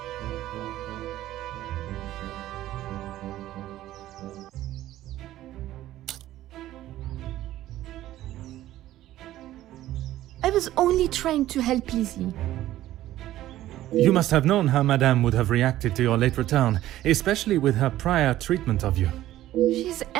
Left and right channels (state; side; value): quieter; left; 14.2 dB